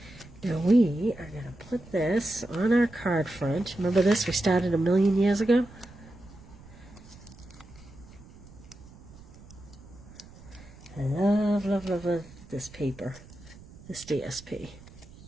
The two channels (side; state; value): right; noise; rumble, 20 dB below the sound